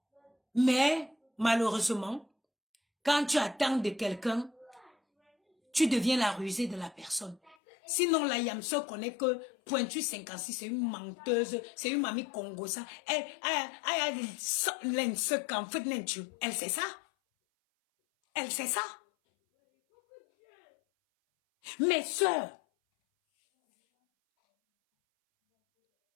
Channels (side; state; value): right; drops out; at 7.6 s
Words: Mais, malheureusement, quand tu attends de quelqu'un, tu deviens la rusée de la personne. Sinon, la Yamso connaît que Pointu 56, c'est une menteuse, c'est une mamie congosa. Elle sait ça. Elle sait ça. Mes sœurs,